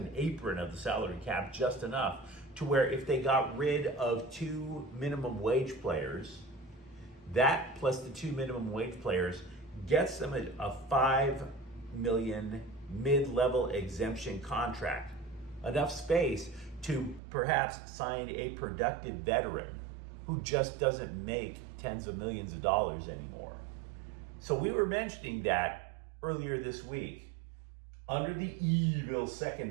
apron of the salary cap, just enough to where if they got rid of 2 minimum wage players, that plus the 2 minimum wage players gets them a $5 million mid-level exemption contract, enough space to perhaps sign a productive veteran who just doesn't make tens of millions of dollars anymore. So we were mentioning that earlier this week. Under the evil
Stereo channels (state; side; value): drops out; left; at 17.2 s